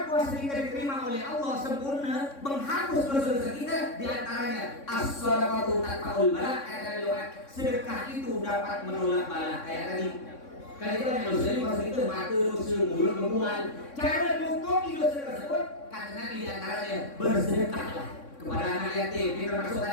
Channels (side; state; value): right; late; 3.6 ms